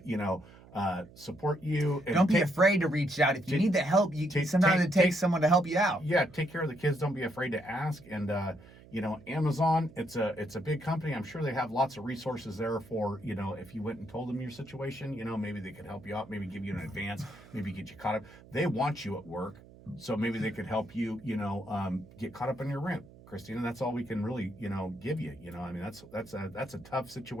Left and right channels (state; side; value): noise; right; hum, 21 dB below the sound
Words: support you. And don't be afraid to reach out. If you need the help, sometimes it takes someone to help you out. Yeah, take care of the kids. Don't be afraid to ask. And, Amazon, it's a big company. I'm sure they have lots of resources there for, if you went and told them your situation, maybe they could help you out, maybe give you an advance, maybe get you caught up. They want you at work, so maybe they could help you, get caught up on your rent. Christina, that's all we can really, give you. That's a tough